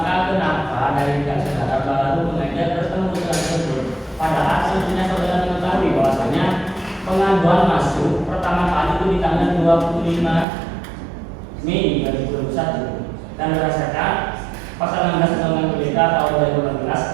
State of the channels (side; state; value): left; drops out; at 10.5 s